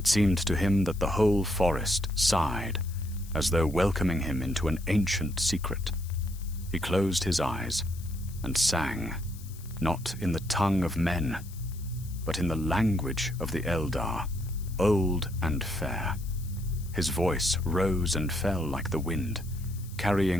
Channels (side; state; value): left; noise; hiss, 20 dB below the sound